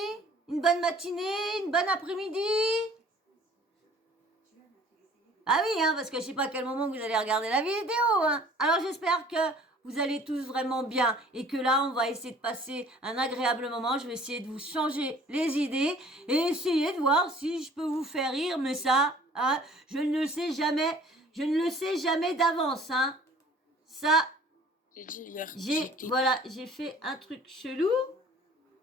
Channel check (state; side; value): normal; both; correlation 0.52